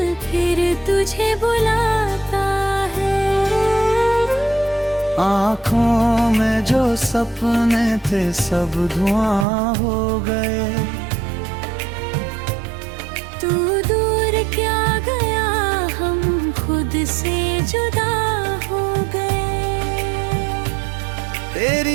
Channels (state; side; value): drops out; left; at 9.5 s